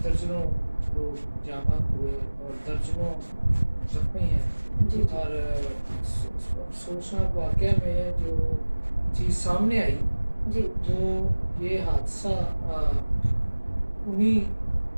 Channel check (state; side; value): inverted; both; correlation -1.00